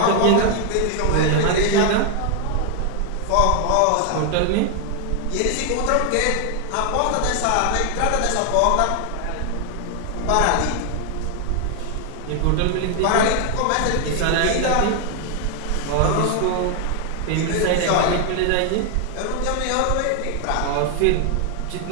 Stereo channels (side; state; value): both; different; correlation 0.00